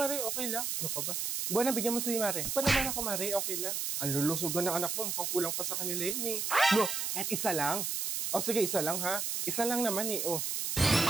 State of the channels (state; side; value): noise; right; hiss, 1 dB below the sound